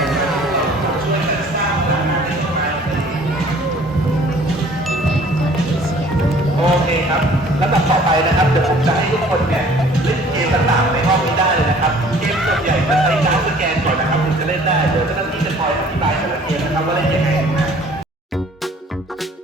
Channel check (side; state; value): both; normal; correlation 0.53